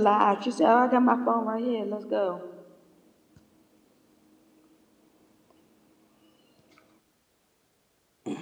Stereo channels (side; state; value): both; identical; correlation 1.00